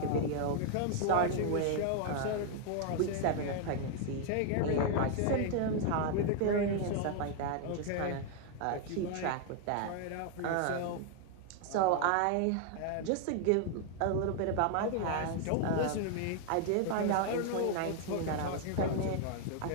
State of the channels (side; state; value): both; different; correlation 0.00